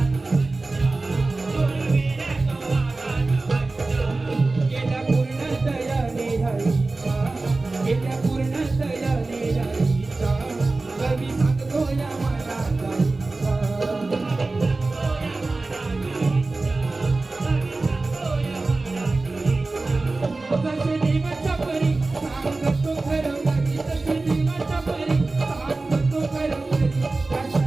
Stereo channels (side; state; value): left; quieter; 3.4 dB